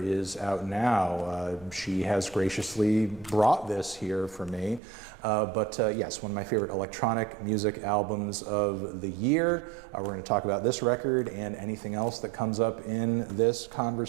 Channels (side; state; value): left; drops out; at 4.8 s